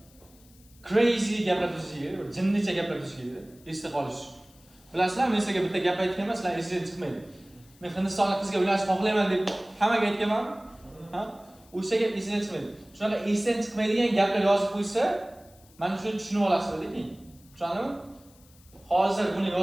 crazy gaplar tuzishinglar kerak, bir jinnicha gaplar tuzishinglar kerak. Esda qolish. Bilasizlar, men sizlarga bitta gap aytganman, sizlar esingizdan chiqmaydi. Men Hindistonlik qizga uylanish xohlayman deb hammaga aytganman. Ha? O'sha gap esingizdan chiqmaydi. Shunaqa esdan chiqmaydigan gaplar yozib qo'ysa, mana shuni tushunib olasizlar keyin. Tushundingmi? Hozir buni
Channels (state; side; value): noise; left; hiss, 27 dB below the sound